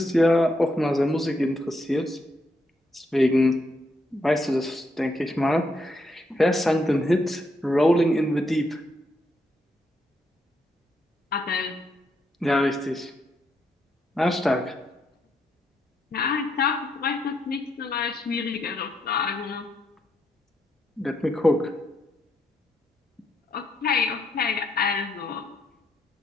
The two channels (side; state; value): both; normal; correlation 0.78